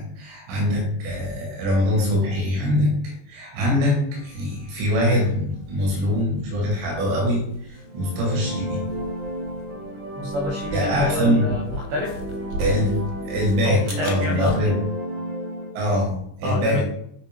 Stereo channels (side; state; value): left; late; 21 ms